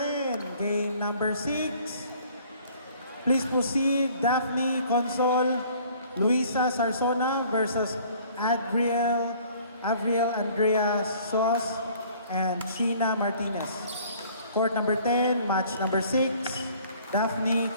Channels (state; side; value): inverted; both; correlation -0.55